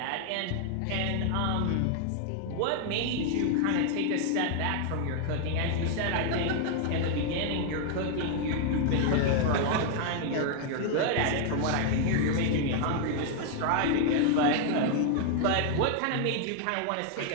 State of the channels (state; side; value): different; both; correlation 0.00